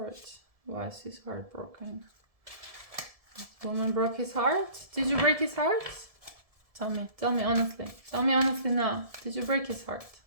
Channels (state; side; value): late; left; 1.7 ms